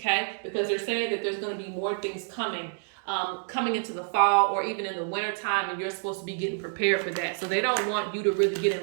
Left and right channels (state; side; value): silent; left; digital silence